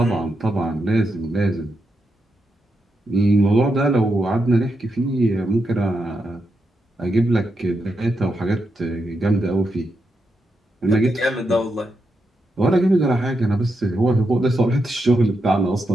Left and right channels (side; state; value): both; normal; correlation 0.85